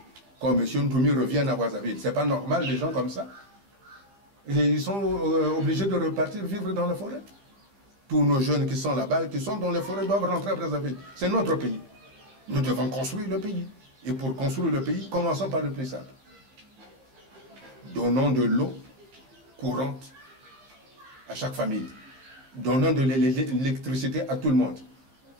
comme M. Ntoumi revienne à Brazzaville. Ce n'est pas normal, des gens comme ça. Et ils sont obligés de repartir vivre dans la forêt. Tous nos jeunes qui sont là-bas, qui sont dans les forêts, doivent rentrer à Brazzaville. C'est notre pays. Nous devons construire le pays. Et pour construire le pays, commençons par le plus simple. Donnons de l'eau courante à chaque famille. Donnons de l'électricité à tout le monde,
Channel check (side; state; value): left; late; 15 ms